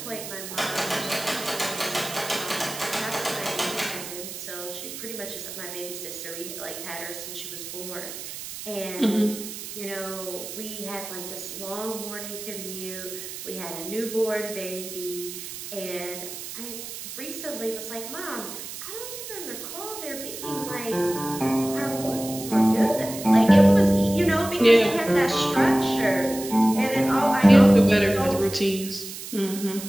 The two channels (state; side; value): noise; right; hiss, 10 dB below the sound